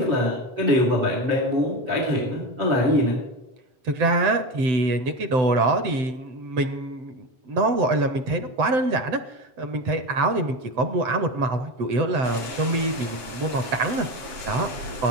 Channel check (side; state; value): left; late; 7.8 ms